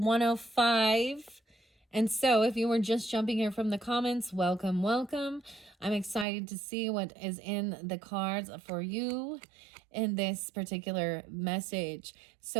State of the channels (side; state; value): left; drops out; at 6.2 s